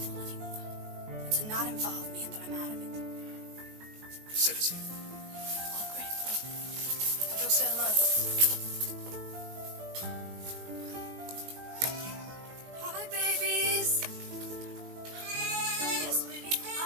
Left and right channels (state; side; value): late; left; 19 ms